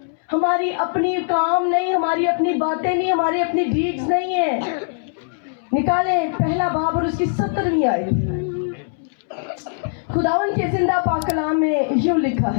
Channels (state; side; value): silent; right; 65 dB below the other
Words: हमारी अपनी काम नहीं, हमारी अपनी बातें नहीं, हमारी अपनी डीड्स नहीं है। निकालें पहला बाब और उसकी 70वीं आयत। खुदावंद के जिंदा पाक कलाम में यूं लिखा